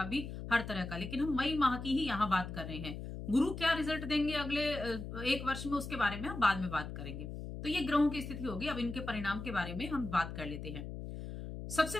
भी, हर तरह का। लेकिन हम मई माह की ही यहाँ बात कर रहे हैं। गुरु क्या रिजल्ट देंगे अगले 1 वर्ष में, उसके बारे में हम बाद में बात करेंगे। तो ये ग्रहों की स्थिति होगी। अब इनके परिणाम के बारे में हम बात कर लेते हैं। सबसे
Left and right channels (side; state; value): left; noise; hum, 8 dB below the sound